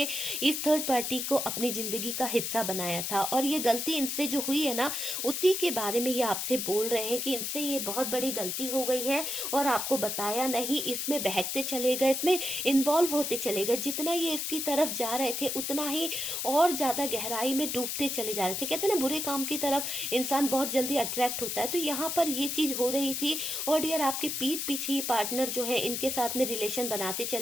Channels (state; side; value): noise; left; hiss, 2 dB below the sound